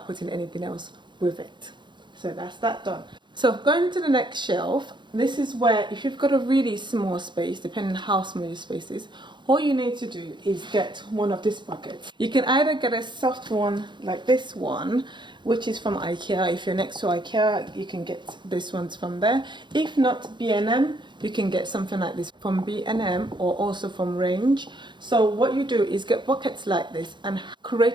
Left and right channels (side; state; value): left; late; 0.22 ms